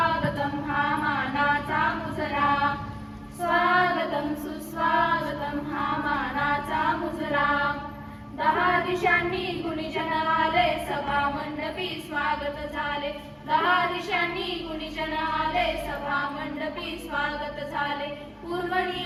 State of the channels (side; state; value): both; identical; correlation 1.00